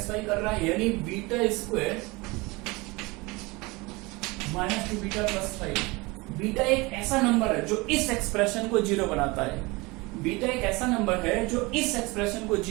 कर रहा है, यानी beta square minus 2 beta plus 5। Beta एक ऐसा नंबर है जो इस एक्सप्रेशन को 0 बनाता है। बीटा एक ऐसा नंबर है जो इस एक्सप्रेशन को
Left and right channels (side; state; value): left; quieter; 24.2 dB